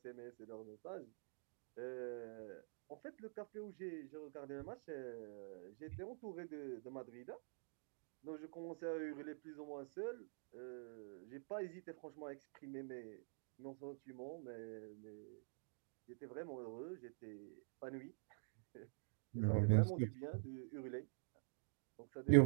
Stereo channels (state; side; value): silent; left; digital silence